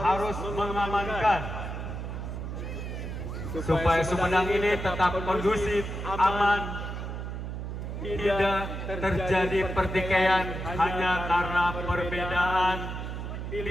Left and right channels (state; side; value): noise; right; hum, 6 dB below the sound